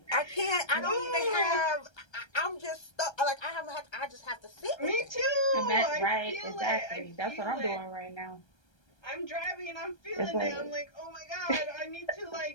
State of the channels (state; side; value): late; right; 1.3 ms